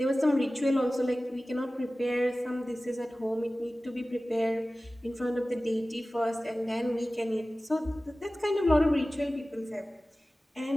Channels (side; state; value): both; normal; correlation 0.97